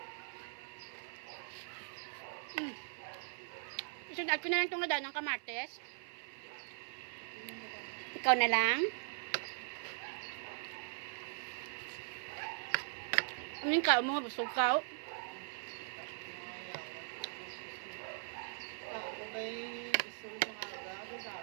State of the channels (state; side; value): silent; left; 51 dB below the other